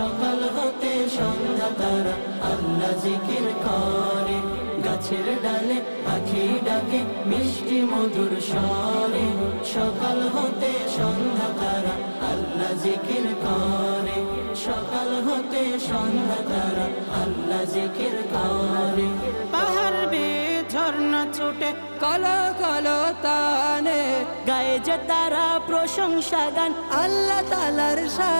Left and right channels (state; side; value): inverted; both; correlation -1.00